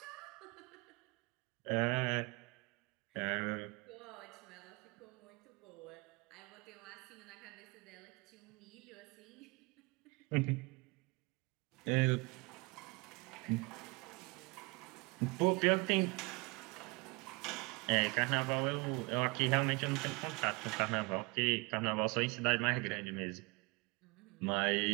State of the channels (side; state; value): left; quieter; 27.9 dB